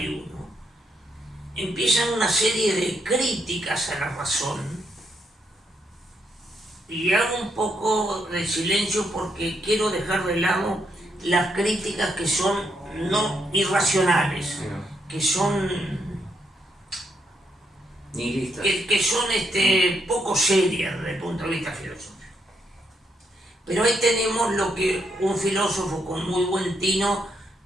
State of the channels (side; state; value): both; normal; correlation 0.77